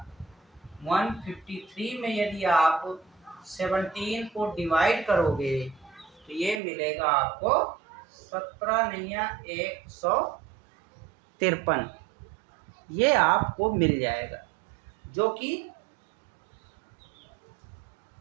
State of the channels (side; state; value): left; drops out; at 6.6 s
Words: 153 में यदि आप 17 को डिवाइड करोगे तो ये मिलेगा आपको 17 नहीं 153, ये आपको मिल जाएगा। जो कि